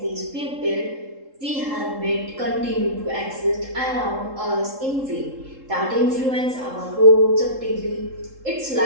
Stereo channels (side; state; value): left; late; 3.7 ms